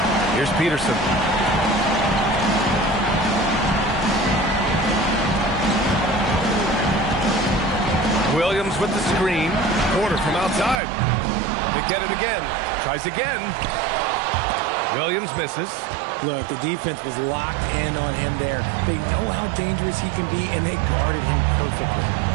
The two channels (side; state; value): left; drops out; at 10.8 s